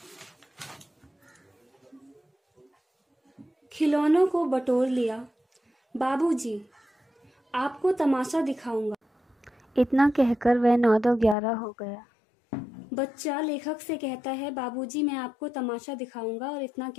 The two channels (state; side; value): drops out; right; at 11.4 s